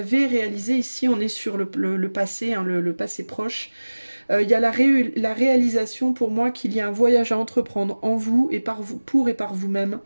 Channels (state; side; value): inverted; both; correlation -1.00